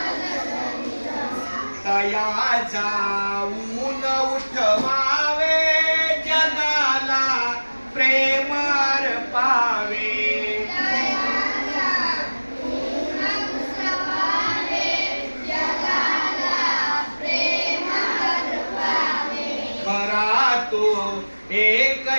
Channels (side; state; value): both; inverted; correlation -1.00